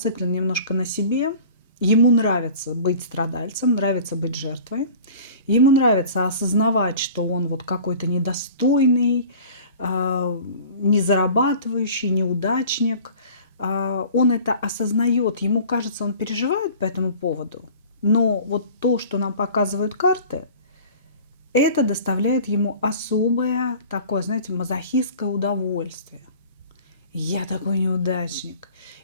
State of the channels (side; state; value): both; inverted; correlation -0.44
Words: немножко на себе. Ему нравится быть страдальцем, нравится быть жертвой. Ему нравится осознавать, что он вот какой-то недостойный, не зарабатывающий, неудачник. Он это осознает, ему кажется, он переживает по этому поводу. Но вот то, что нам показывают карты, это доставляет ему особое такое, знаете, мазохистское удовольствие. Я такой неудачник,